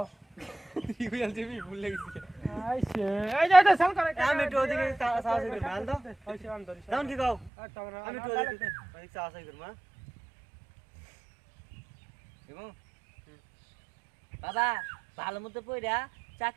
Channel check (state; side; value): drops out; left; at 7.5 s